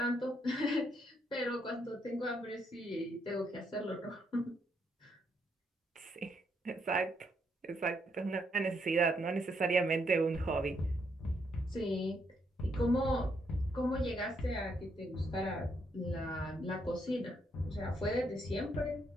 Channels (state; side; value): normal; both; correlation 0.75